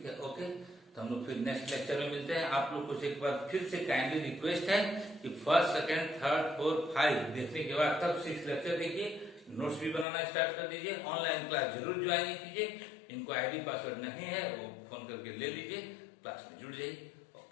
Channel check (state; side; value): drops out; right; at 10.1 s